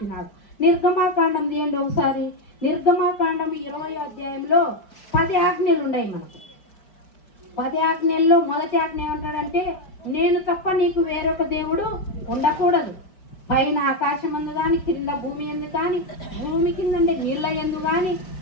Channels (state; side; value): late; right; 5.1 ms